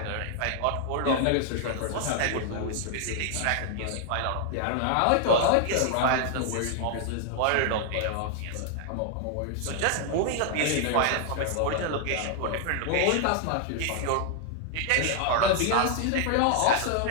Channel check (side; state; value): both; different; correlation 0.00